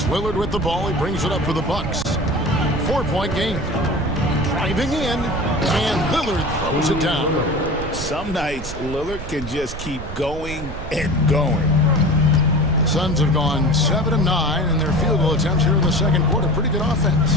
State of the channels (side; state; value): right; noise; rumble, 10 dB below the sound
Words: Lillard with the ball. He brings it up for the Bucks. 4-point game. Driving in, and Lillard throws it down. Some nights, Lillard can just keep going and going. The Suns have gone 7 of 9 in their field goal attempts here in the second quarter. Pretty good